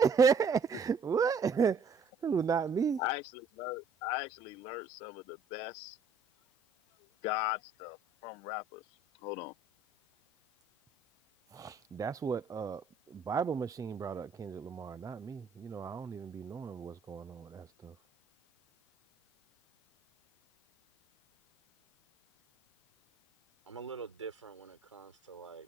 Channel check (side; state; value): left; quieter; 3.8 dB